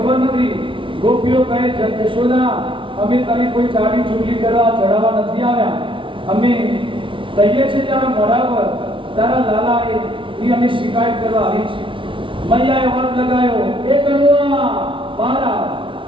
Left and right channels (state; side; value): late; left; 0.25 ms